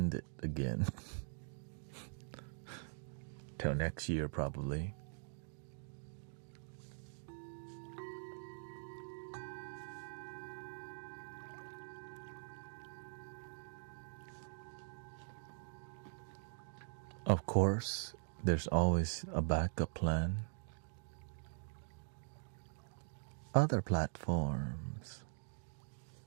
it again. Till next year probably. Of course, there's always a backup plan. Other platforms.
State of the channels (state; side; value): silent; left; digital silence